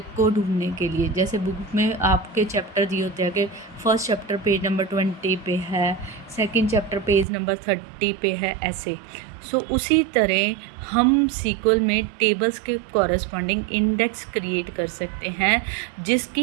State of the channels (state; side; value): drops out; left; at 7.2 s